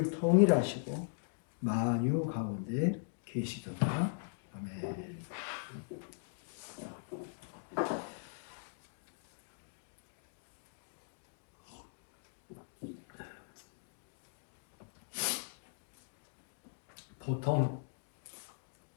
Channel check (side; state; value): right; silent; digital silence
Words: 통일하시고 만유 가운데 계시도다. 아멘. 보통